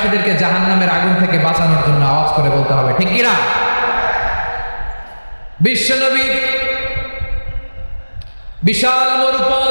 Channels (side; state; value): both; inverted; correlation -1.00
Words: জাহান্নামের আগুন থেকে বাঁচানোর জন্য আওয়াজ করে বলতে হবে, ঠিক কিনা? বিশ্বনবী বিশাল